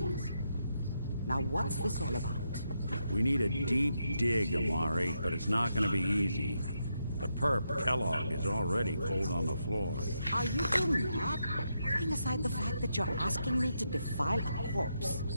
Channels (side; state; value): both; inverted; correlation -0.82